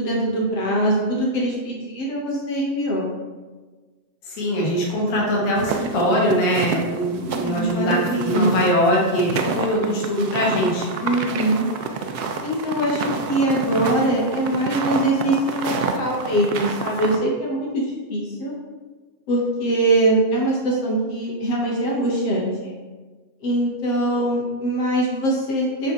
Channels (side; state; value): right; late; 7.6 ms